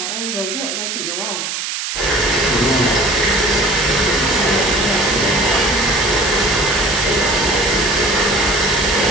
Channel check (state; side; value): noise; right; hiss, 4 dB below the sound